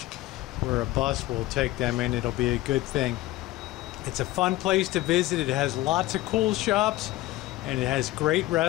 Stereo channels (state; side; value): quieter; right; 16.9 dB